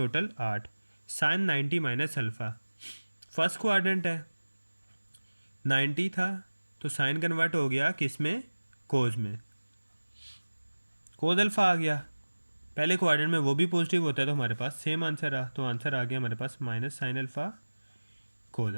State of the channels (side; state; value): both; inverted; correlation -1.00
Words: 8। Sine 90 minus alpha first quadrant है, 90 था तो साइन कन्वर्ट हो गया किस में कोस में, कोस अल्फ़ा आ गया। पहले क्वाड्रेंट में वो भी पॉजिटिव होता है तो हमारे पास सेम आंसर आ, तो आंसर आ गया हमारे पास minus sine alpha cos